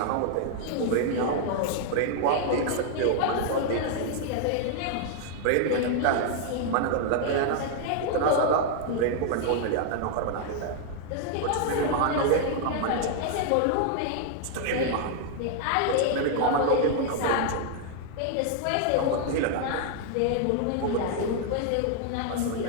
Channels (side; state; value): both; different; correlation 0.00